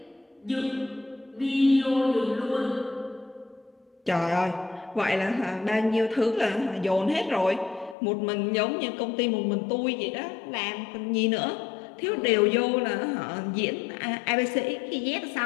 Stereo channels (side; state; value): right; drops out; at 8.0 s